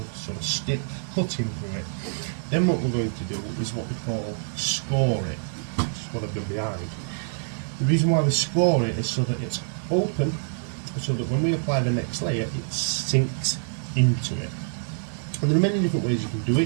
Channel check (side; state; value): left; silent; digital silence